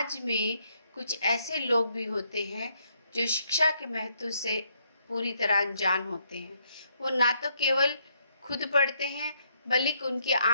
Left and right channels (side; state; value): both; inverted; correlation -0.73